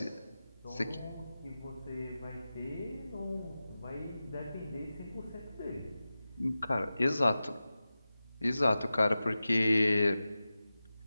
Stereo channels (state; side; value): inverted; both; correlation -0.94